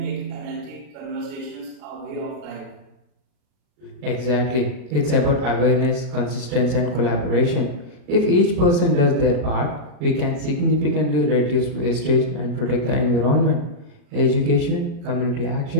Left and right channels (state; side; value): late; left; 40 ms